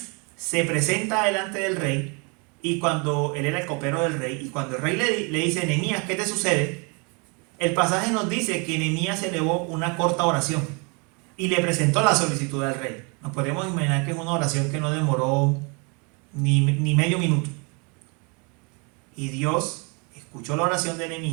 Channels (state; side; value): quieter; left; 32.4 dB